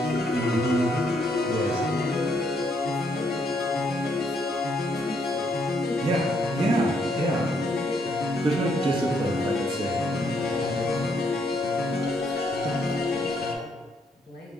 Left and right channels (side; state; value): both; normal; correlation 0.73